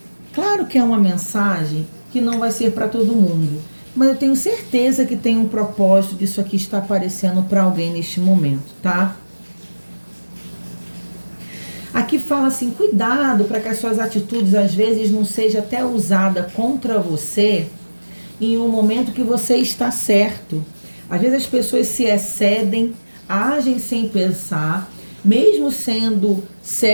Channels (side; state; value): both; inverted; correlation -1.00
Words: claro que é uma mensagem que não vai ser para todo mundo, mas eu tenho certeza que tem um propósito disso aqui estar aparecendo para alguém neste momento, tá? Aqui fala assim, cuidado para que as suas atitudes às vezes não seja até usada contra você em um momento que você está certo. Às vezes as pessoas se excedem, agem sem pensar, mesmo sendo